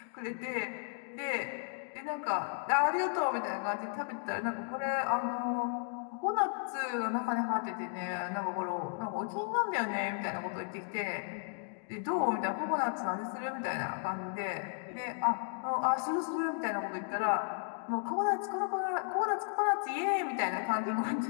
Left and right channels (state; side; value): silent; right; 55 dB below the other